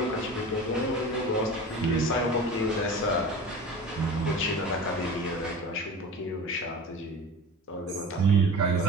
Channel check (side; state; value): both; normal; correlation 0.36